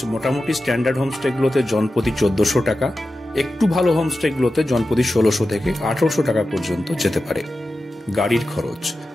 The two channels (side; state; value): both; normal; correlation 0.93